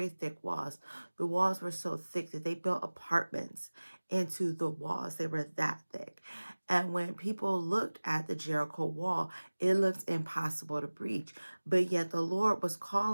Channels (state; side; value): inverted; both; correlation -1.00